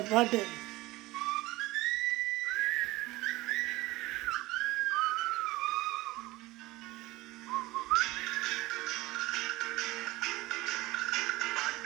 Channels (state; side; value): quieter; left; 19.6 dB